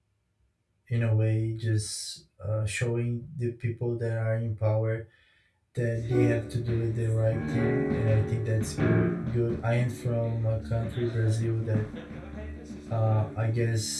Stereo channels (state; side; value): identical; both; correlation 1.00